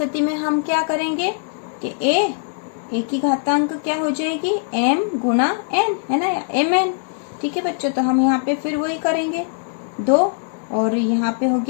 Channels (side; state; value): right; silent; digital silence